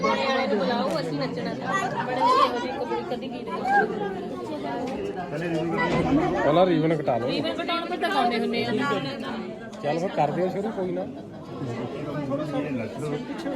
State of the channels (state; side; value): identical; both; correlation 1.00